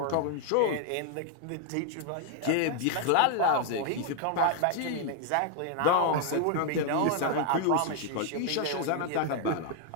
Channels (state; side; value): different; both; correlation 0.00